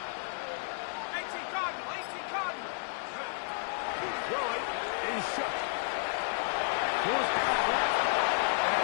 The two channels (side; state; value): right; silent; 56 dB below the other